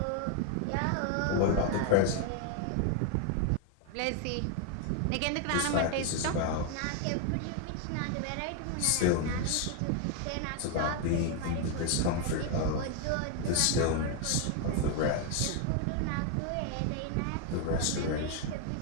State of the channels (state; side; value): different; both; correlation 0.01